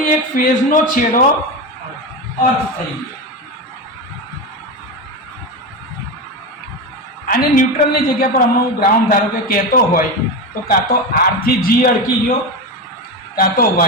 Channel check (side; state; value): both; normal; correlation 0.18